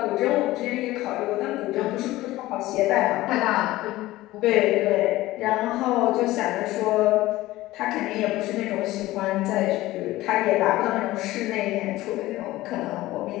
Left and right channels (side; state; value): right; quieter; 17.2 dB